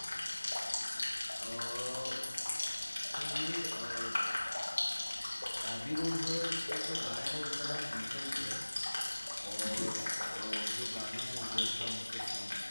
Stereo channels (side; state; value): both; inverted; correlation -1.00